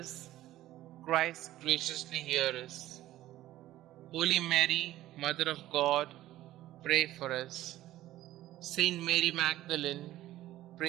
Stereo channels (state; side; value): quieter; left; 14.8 dB